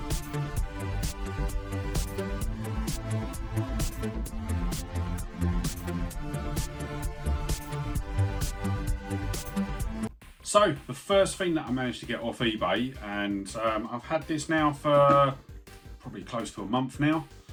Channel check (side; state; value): both; identical; correlation 1.00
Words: So the first thing that I managed to get off eBay, and I've had this now for probably close to a month now,